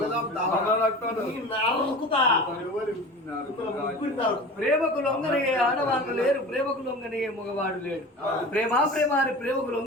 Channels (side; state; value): both; normal; correlation 0.35